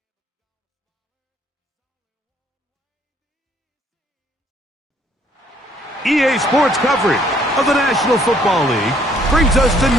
EA Sports coverage of the National Football League brings us to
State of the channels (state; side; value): normal; both; correlation 0.63